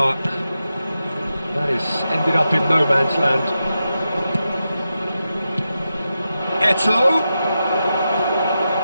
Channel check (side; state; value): both; inverted; correlation -0.89